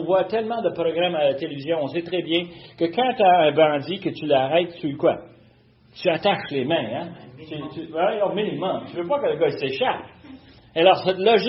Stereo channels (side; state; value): both; identical; correlation 1.00